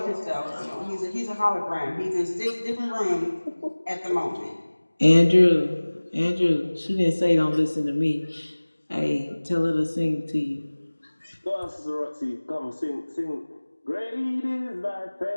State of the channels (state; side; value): inverted; both; correlation -1.00